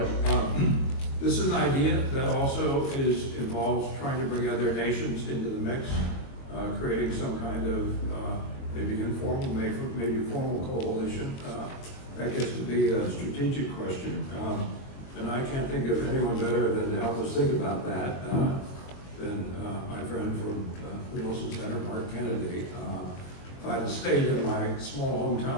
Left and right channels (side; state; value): right; late; 22 ms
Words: this is an idea that also involves trying to bring other nations into the mix, creating some kind of maybe informal, maybe formal coalition. That gets to be a strategic question. And I can't think of anyone better than to help us think about that than my friend from the Wilson Center, Mark Kennedy. If I had stayed in my small